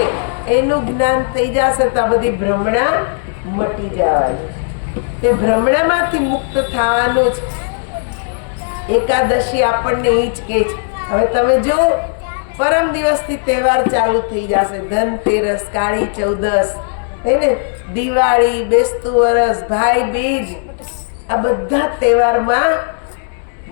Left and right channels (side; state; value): right; silent; 69 dB below the other